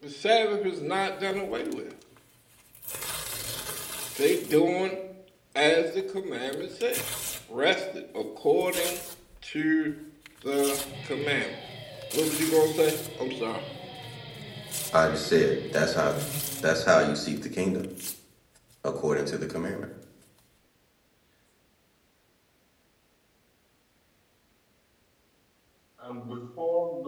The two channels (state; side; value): identical; both; correlation 1.00